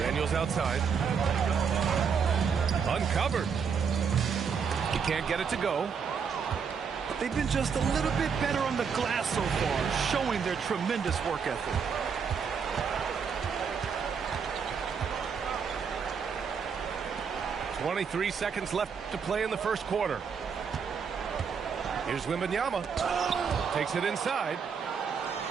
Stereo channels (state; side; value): quieter; left; 6.3 dB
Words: outside. Uncovered. He can't get it to go. They've been just a little bit better on the glass so far, showing their tremendous work ethic. .23 seconds left to play in the first quarter. Here's Wembanyama. Takes it inside.